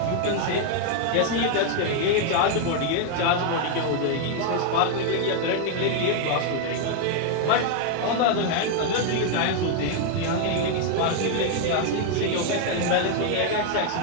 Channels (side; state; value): both; different; correlation 0.00